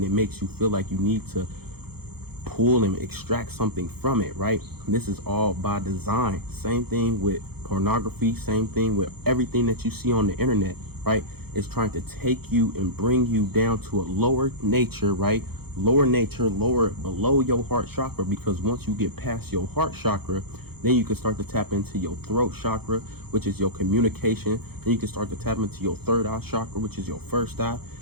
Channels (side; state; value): left; late; 0.96 ms